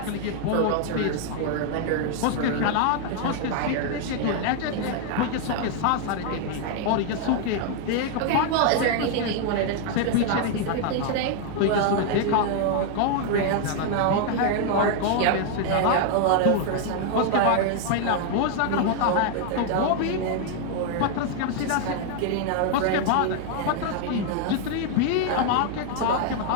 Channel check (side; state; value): both; different; correlation 0.00